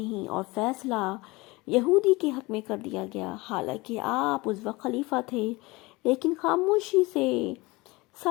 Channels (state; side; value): quieter; right; 22.9 dB